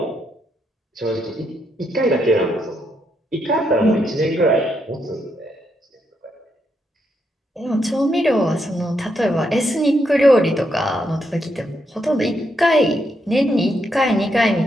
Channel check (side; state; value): both; normal; correlation 0.79